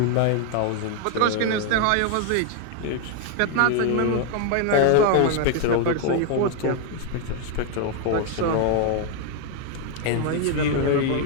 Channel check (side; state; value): both; different; correlation 0.01